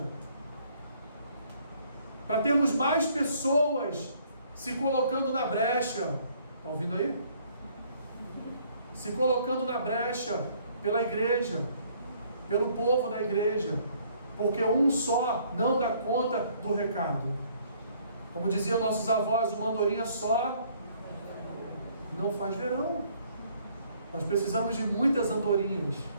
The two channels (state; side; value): inverted; both; correlation -0.62